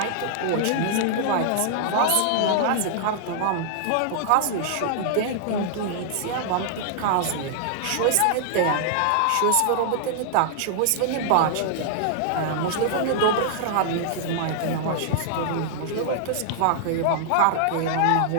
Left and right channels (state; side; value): different; both; correlation -0.01